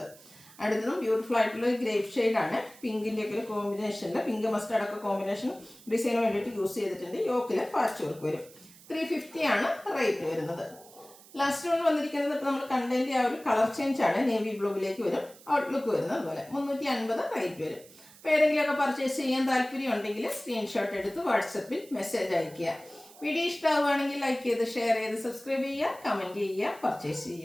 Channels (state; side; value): noise; right; hiss, 22 dB below the sound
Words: അടുത്തതും ബ്യൂട്ടിഫുൾ ആയിട്ടുള്ള ഗ്രേപ്പ് ഷെയ്ഡാണ്. പിങ്കിൻ്റെ ഒക്കെ ഒരു കോമ്പിനേഷനിൽ പിങ്ക് മസ്റ്റാർഡ് ഒക്കെ കോമ്പിനേഷൻ ഡിസൈന് വേണ്ടിയിട്ട് യൂസ് ചെയ്തിട്ടുണ്ട്. യോക്കിൽ പാച്ച് വർക്ക് വരും. 350 റേറ്റ് വരുന്നത്. ലാസ്റ്റ് വൺ വന്നിരിക്കുന്നത് ഇപ്പോൾ നമ്മൾ കണ്ടതിൻ്റെ ആ ഒരു കളർ ചേഞ്ച് ആണ്. നേവി ബ്ലൂവിലേക്ക് വരും. ഔട്ട്ലുക്ക് വരുന്നത് അതുപോലെ 350 റേറ്റ് വരും. അപ്പോൾ ഏതെങ്കിലുമൊക്കെ പർച്ചേസ് ചെയ്യാൻ താല്പര്യം ഉണ്ടെങ്കിൽ സ്ക്രീൻഷോട്ട് എടുത്ത് വാട്സപ്പിൽ മെസ്സേജ് അയയ്ക്കുക. വീഡിയോ ഇഷ്ടമാവുകയാണെങ്കിൽ ലൈക്ക് ചെയ്ത് ഷെയർ ചെയ്ത് സബ്സ്ക്രൈബ് ചെയ്യുക, കമൻറ്റ് ചെയ്യുക, പർച്ചേസ്